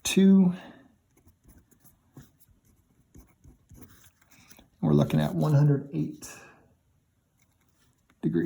We're looking at 108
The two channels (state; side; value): identical; both; correlation 1.00